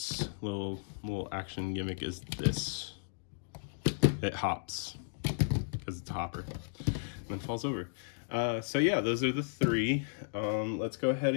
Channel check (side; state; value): right; silent; digital silence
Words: little action gimmick is this. It hops because it's a hopper and then falls over. So yeah, those are the three. Let's go ahead